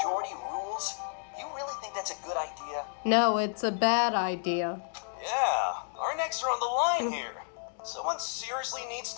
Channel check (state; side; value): silent; right; digital silence